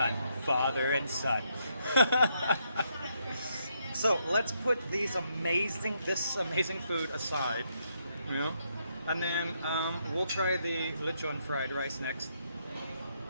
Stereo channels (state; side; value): inverted; both; correlation -0.77